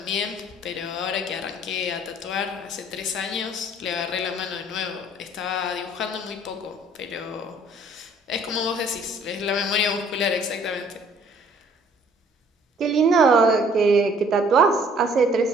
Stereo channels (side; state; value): both; normal; correlation 0.58